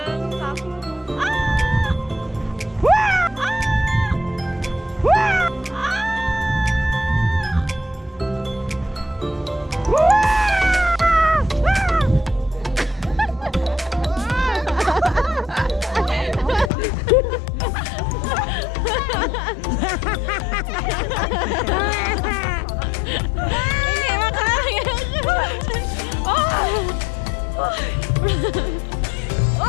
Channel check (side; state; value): right; drops out; at 16.7 s